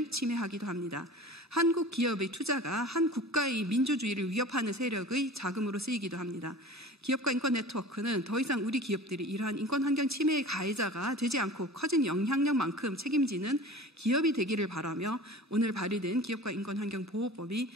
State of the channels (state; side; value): normal; both; correlation 0.39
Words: 침해하기도 합니다. 한국 기업의 투자가 한 국가의 민주주의를 위협하는 세력의 자금으로 쓰이기도 합니다. 기업과 인권 네트워크는 더 이상 우리 기업들이 이러한 인권 환경 침해의 가해자가 되지 않고 커진 영향력만큼 책임지는 기업이 되기를 바라며 오늘 발의된 기업과 인권 환경 보호법이